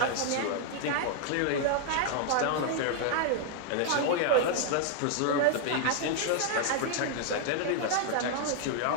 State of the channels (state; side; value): different; both; correlation 0.00